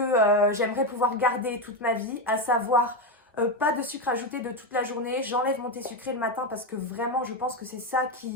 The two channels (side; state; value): both; normal; correlation 0.10